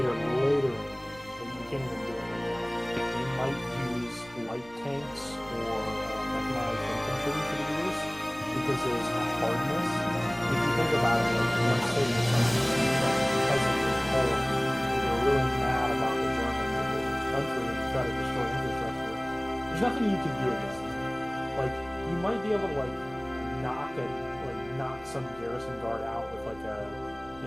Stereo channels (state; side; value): noise; right; rumble, 23 dB below the sound